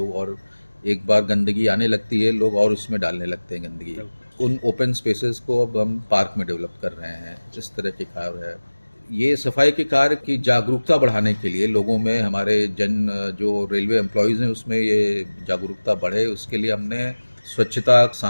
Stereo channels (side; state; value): both; inverted; correlation -1.00